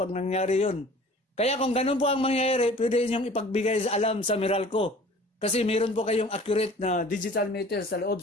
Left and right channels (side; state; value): both; normal; correlation 0.47